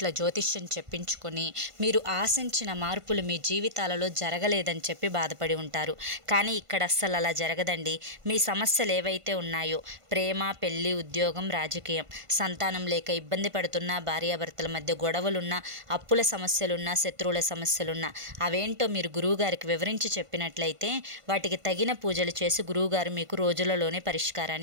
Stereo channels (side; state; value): left; late; 1.5 ms